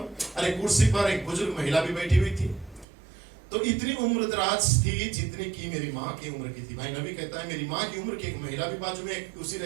अरे कुर्सी पर एक बुजुर्ग महिला भी बैठी हुई थी, तो इतनी उम्र दराज थी जितनी की मेरी माँ की उम्र की थी। भाई नबी कहता है मेरी माँ की उम्र की एक महिला भी बाजू में उसी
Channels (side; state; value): left; drops out; at 2.9 s